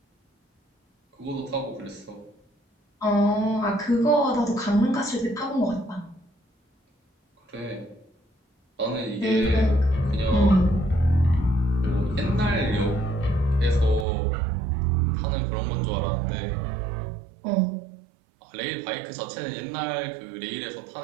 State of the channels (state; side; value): drops out; left; at 14.1 s